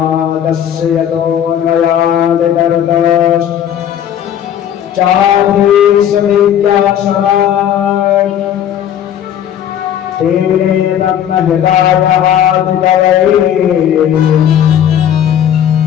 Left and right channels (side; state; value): right; quieter; 9.9 dB